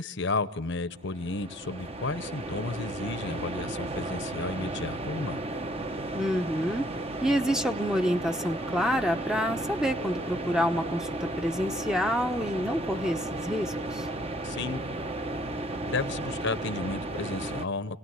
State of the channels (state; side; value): normal; both; correlation 0.62